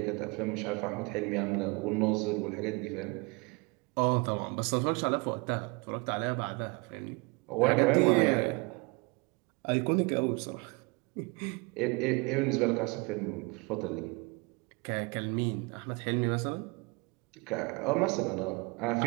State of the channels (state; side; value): quieter; left; 28.7 dB